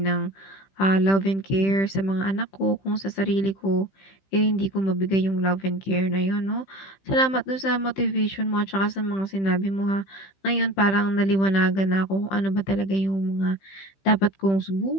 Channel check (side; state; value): right; late; 15 ms